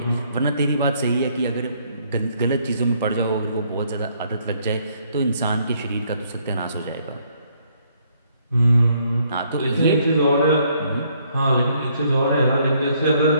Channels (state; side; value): inverted; both; correlation -0.68